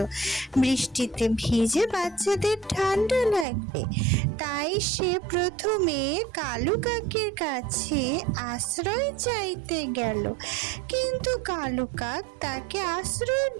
বৃষ্টিতে ভিজে বাচ্চাদের ঠান্ডা লাগবে, তাই সে প্রথমে কালু কাকের কাছে আশ্রয় চাইতে গেল। কিন্তু কালু কাক তাকে আশ্রয়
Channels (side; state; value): left; drops out; at 3.5 s